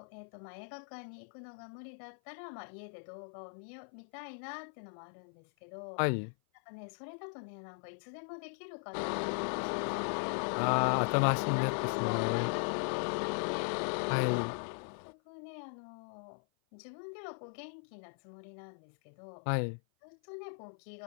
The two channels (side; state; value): right; silent; 52 dB below the other